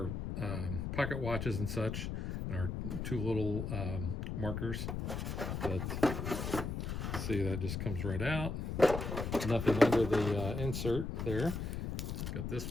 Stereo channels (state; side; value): noise; left; rumble, 3 dB below the sound